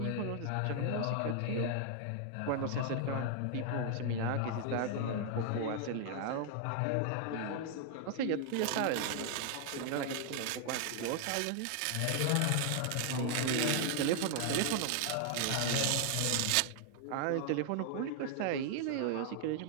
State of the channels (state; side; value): different; both; correlation 0.00